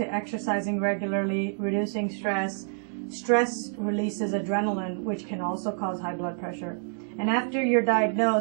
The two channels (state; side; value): silent; left; 60 dB below the other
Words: exercising regularly, reducing stress. Stress releases adrenaline, which can also cause high blood pressure. And after you're